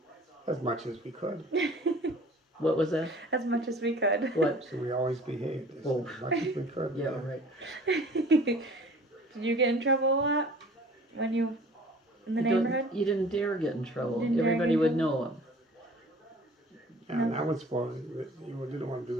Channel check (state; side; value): normal; both; correlation 0.48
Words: As much as we could. what was that? As much as we could. What? So we always behaved as Oh. much as we could. Yeah, right. Did you get in trouble a lot when you in the You don't- neighborhood? You didn't dare get in trouble. Didn't dare Everybody get in would trouble? know him. And I was supposed you didn't want to